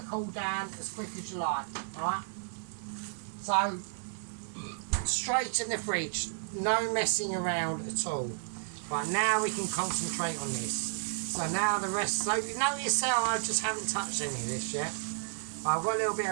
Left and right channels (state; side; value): silent; left; 56 dB below the other